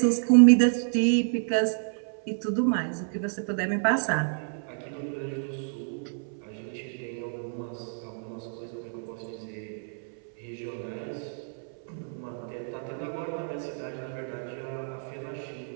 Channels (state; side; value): silent; left; 59 dB below the other